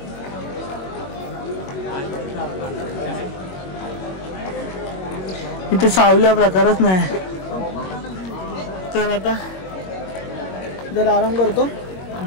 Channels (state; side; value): late; right; 21 ms